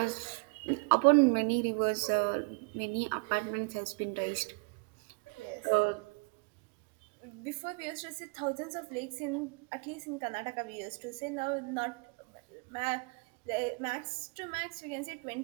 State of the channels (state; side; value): quieter; left; 32.5 dB